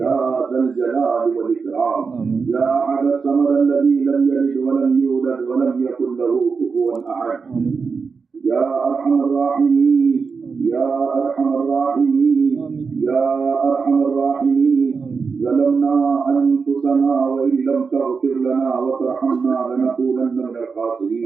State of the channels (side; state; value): left; quieter; 5.1 dB